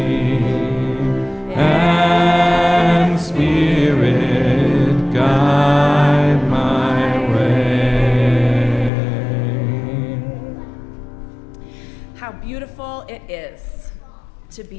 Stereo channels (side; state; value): right; drops out; at 8.9 s